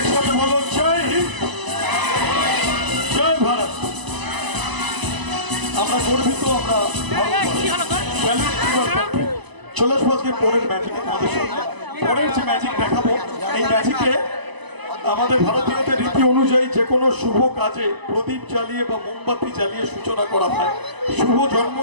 বলো জয় হিন্দ, জয় ভারত। আমরা গর্বিত, আমরা চলে আসবো আজকে পরের ম্যাজিক। আমাদের সামনে পরের যে ম্যাজিক দেখাবো, এই ম্যাজিকে আমাদের ভারতীয়দের রীতি অনুযায়ী যে কোনো শুভ কাজে প্রদীপ জ্বালিয়ে বা মোমবাতি জ্বালিয়ে সূচনা করা হয়। শুভ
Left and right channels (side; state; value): left; late; 1.0 ms